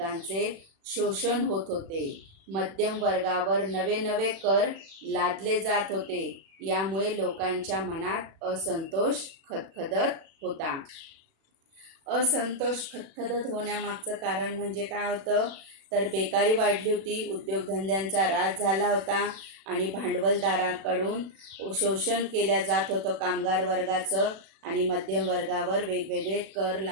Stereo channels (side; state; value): left; late; 36 ms